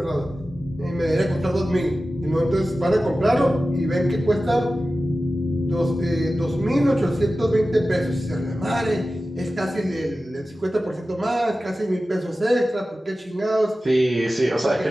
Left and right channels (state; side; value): normal; both; correlation 0.95